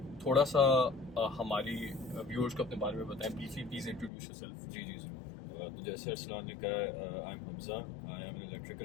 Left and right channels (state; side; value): drops out; right; at 4.1 s